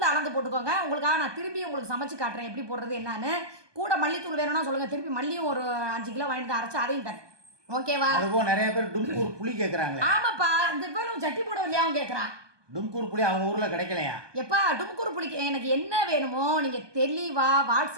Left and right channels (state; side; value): late; left; 1.2 ms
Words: அளந்து போட்டுக்கோங்க. உங்களுக்காக நான் திரும்பி உங்களுக்கு சமைச்சு காட்டுறேன் எப்படி போடுறது என்னன்னு. கூட மல்லித்தூள் வேணும்னா சொல்லுங்கள், திருப்பி மல்லியும் ஒரு 5 கிலோ வாங்கிட்டு அரைச்சி அதையும் தரேன். ஓகேவா? அதுவும் நிறைய பேர் டும்கூர் புளி கேட்குறாங்க. ஆமாப்பா, இந்த பேரும் சட்டி போட இல்லையாவும் கேட்குறான். டும்கூர் புளி அவங்க ஊரில் கிடைக்கலையா? எப்பா டும்கூர் புளிக்கு எனக்கு என்ன வேணுமோ நீங்கள் தெளிவா